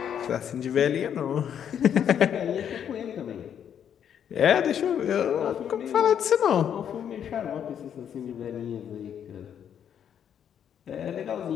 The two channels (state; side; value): quieter; right; 8.9 dB